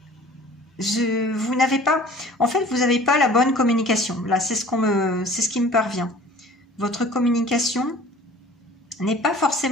vous n'avez pas, en fait, vous n'avez pas la bonne communication. Là, c'est ce qui me parvient. Votre communication n'est pas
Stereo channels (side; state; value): both; normal; correlation 0.47